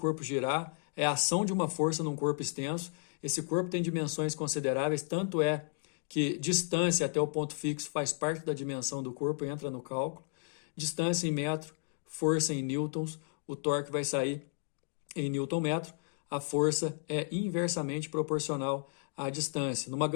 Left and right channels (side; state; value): right; silent; digital silence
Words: girar, é a ação de uma força num corpo extenso. Esse corpo tem dimensões consideráveis, tanto é que distância até o ponto fixo faz parte da dimensão do corpo, entra no cálculo. Distância em metro, força em newtons, o torque vai sair em newton metro, a força é inversamente proporcional à distância. Numa